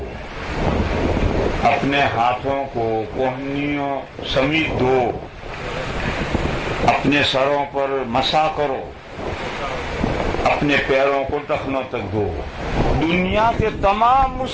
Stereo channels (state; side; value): identical; both; correlation 1.00